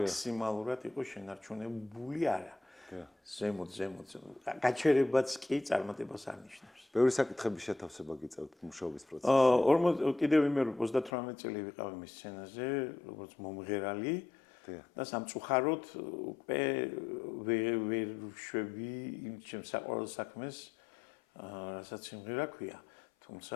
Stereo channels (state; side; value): drops out; right; at 11.1 s